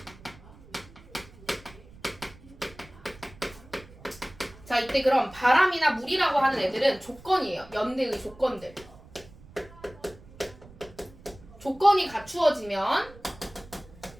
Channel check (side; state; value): right; noise; rumble, 21 dB below the sound